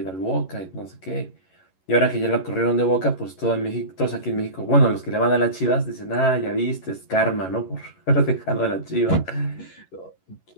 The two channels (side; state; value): right; late; 11 ms